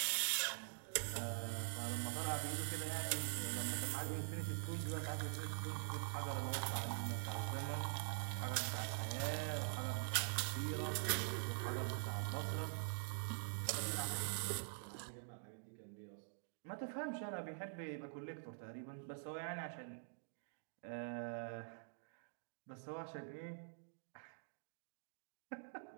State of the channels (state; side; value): silent; left; digital silence